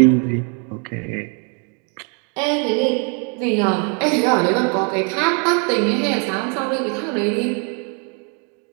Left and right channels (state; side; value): quieter; left; 37.9 dB